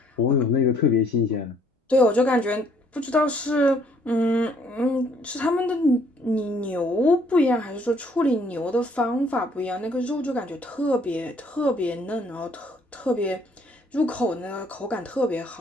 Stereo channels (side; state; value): both; normal; correlation 0.64